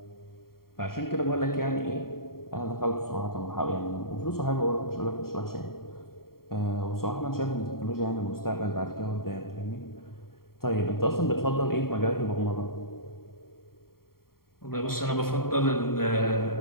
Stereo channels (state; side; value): late; right; 0.93 ms